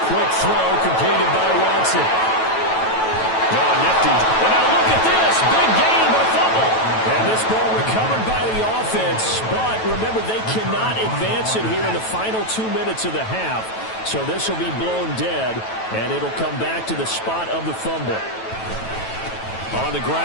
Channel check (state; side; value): late; right; 9.1 ms